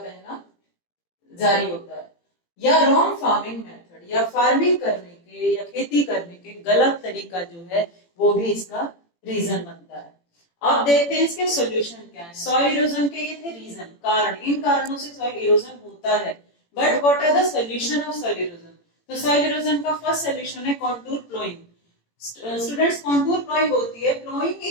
जारी होता है। या रॉन्ग फार्मिंग मेथड, या फार्मिंग करने के या खेती करने के गलत तरीका जो है वो भी इसका रीजन बनता है। अब देखते हैं इसके सॉल्यूशन क्या है। सॉइल इरोजन के ये थे रीजन, कारण, इन कारणों से सॉइल इरोजन होता है। But what are the solution of soil erosion? तो सॉइल इरोजन का फर्स्ट सॉल्यूशन है contour ploughing. Students, contour ploughing होती है ploughing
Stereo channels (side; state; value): right; late; 18 ms